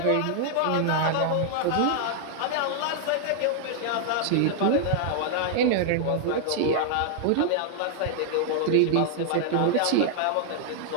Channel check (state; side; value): different; both; correlation -0.01